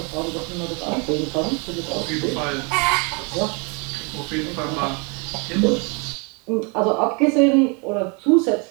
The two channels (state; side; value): quieter; left; 33.5 dB